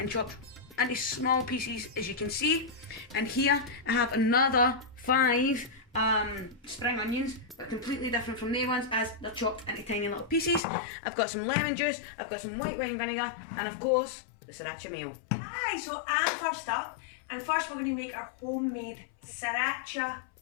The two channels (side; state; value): right; drops out; at 10.6 s